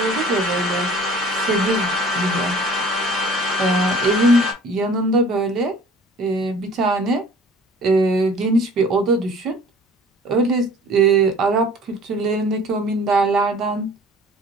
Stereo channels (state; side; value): normal; both; correlation 0.49